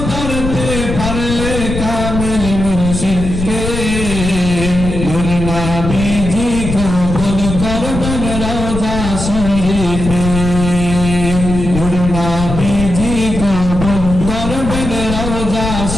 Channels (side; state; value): left; noise; rumble, 5 dB below the sound